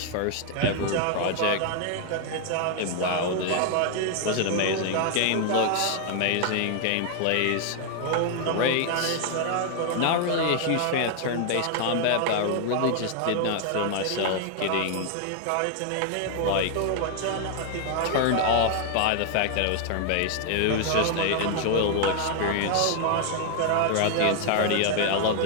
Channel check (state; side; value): different; both; correlation 0.00